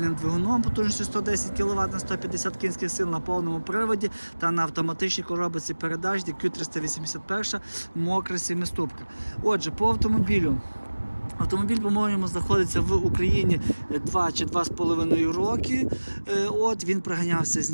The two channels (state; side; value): inverted; both; correlation -1.00